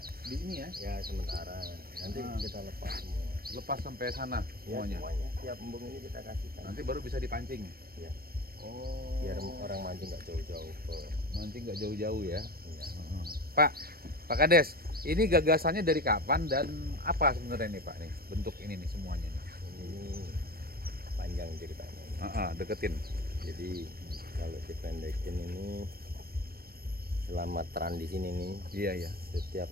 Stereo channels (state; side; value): late; left; 0.44 ms